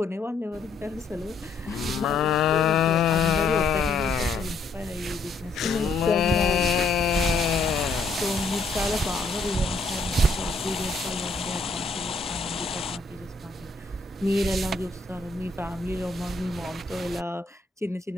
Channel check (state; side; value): quieter; right; 3.6 dB